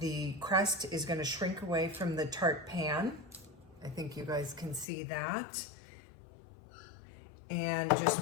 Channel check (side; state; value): right; drops out; at 4.9 s